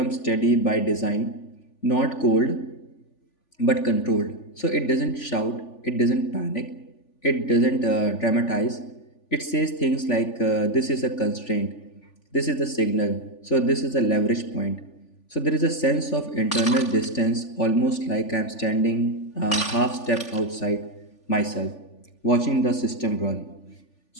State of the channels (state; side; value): late; right; 3.4 ms